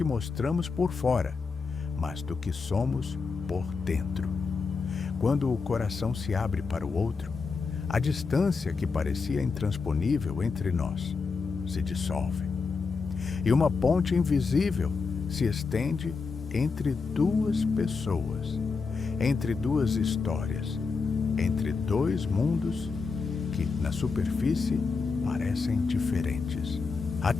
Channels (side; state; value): right; quieter; 4.8 dB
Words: mostramos por fora, mas do que somos por dentro. Quando o coração se abre para o outro, a distância que parecia intransponível entre nós se dissolve. E uma ponte invisível se estende entre duas pessoas, entre duas histórias, entre dois mundos que, na superfície, parecem diferentes. Há